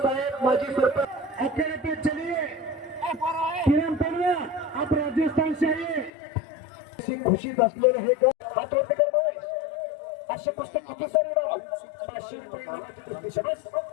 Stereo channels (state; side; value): drops out; right; at 6.1 s